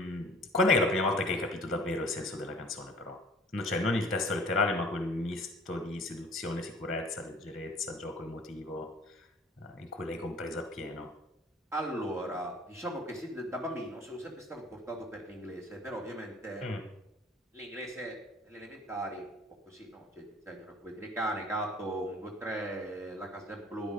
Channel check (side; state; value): both; normal; correlation 0.50